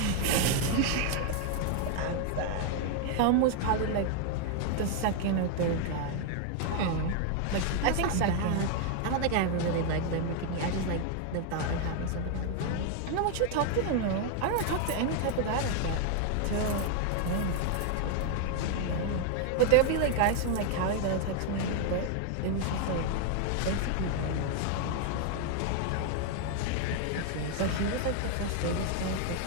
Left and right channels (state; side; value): different; both; correlation 0.00